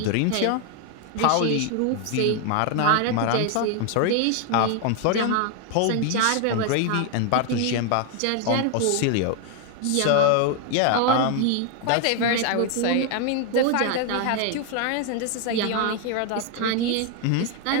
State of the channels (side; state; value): both; different; correlation 0.01